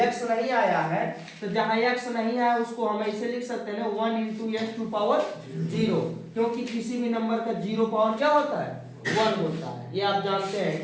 x नहीं आया है तो जहां x नहीं आया उसको हम ऐसे लिख सकते हैं 1 into x टू पावर 0, क्योंकि किसी भी नंबर का 0 पावर क्या होता है 1 होता है। ये आप जानते हैं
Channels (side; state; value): both; identical; correlation 1.00